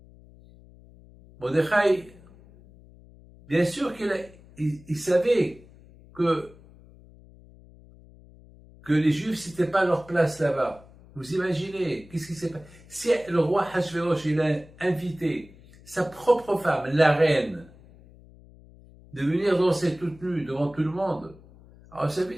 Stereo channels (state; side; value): noise; left; hum, 23 dB below the sound